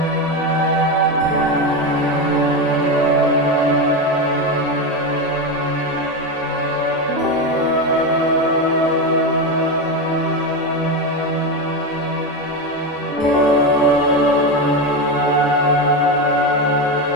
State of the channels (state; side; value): normal; both; correlation 0.15